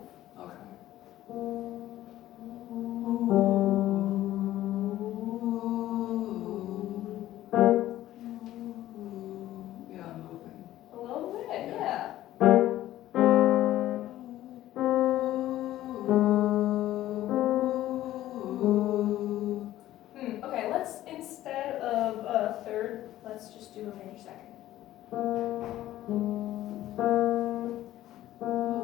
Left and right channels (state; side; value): quieter; right; 14.3 dB